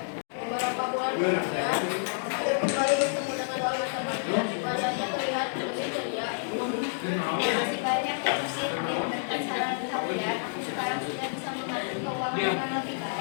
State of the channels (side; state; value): right; silent; digital silence